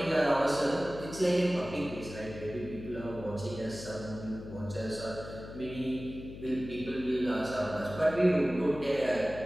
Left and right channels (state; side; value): noise; left; hum, 12 dB below the sound